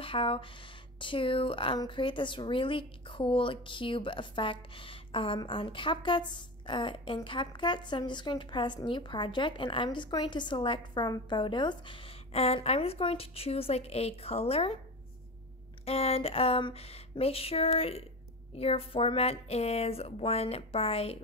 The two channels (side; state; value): both; normal; correlation 0.26